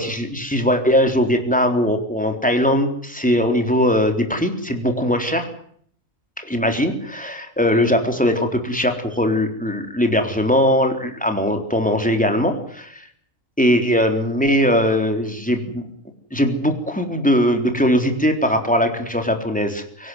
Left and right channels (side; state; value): both; normal; correlation 0.32